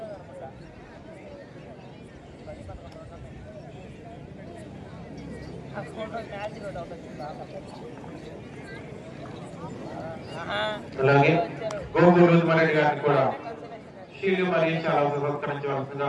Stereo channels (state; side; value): identical; both; correlation 1.00